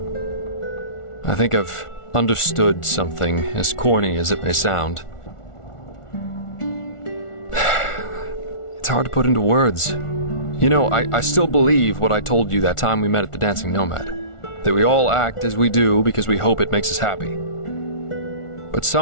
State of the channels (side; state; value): right; late; 1.4 ms